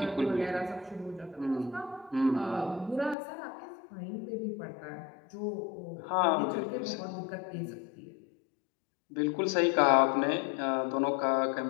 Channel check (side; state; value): right; drops out; at 3.2 s